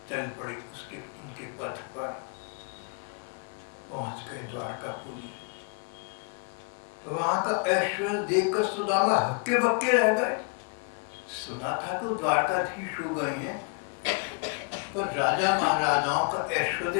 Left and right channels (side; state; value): right; quieter; 37.4 dB